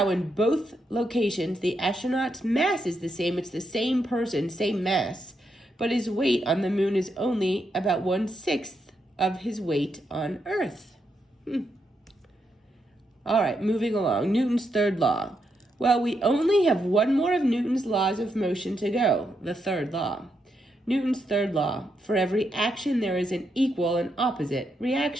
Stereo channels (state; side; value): normal; both; correlation 0.81